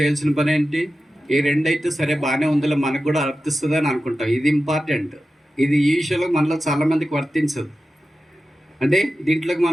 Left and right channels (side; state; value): both; normal; correlation 0.93